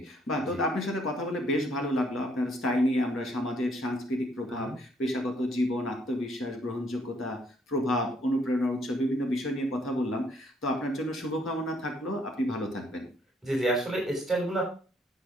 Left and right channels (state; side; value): normal; both; correlation 0.67